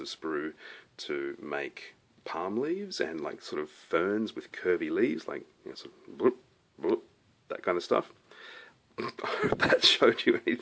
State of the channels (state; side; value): identical; both; correlation 1.00